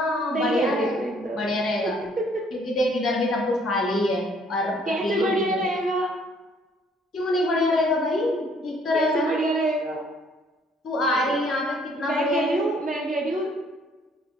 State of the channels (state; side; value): normal; both; correlation 0.62